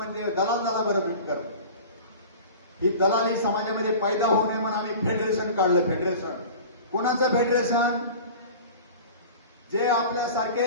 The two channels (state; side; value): inverted; both; correlation -0.38